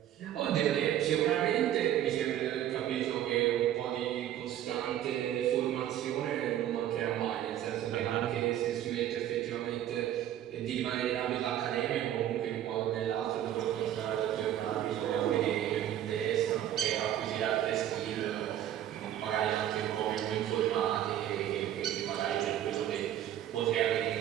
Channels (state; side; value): quieter; left; 11.6 dB